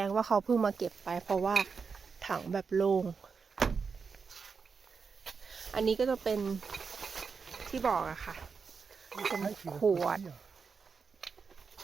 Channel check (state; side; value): quieter; left; 5.4 dB